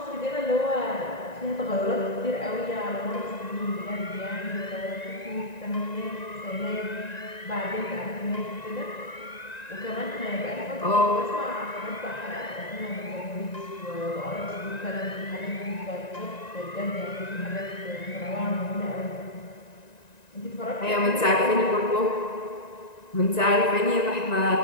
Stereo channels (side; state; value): right; late; 1.9 ms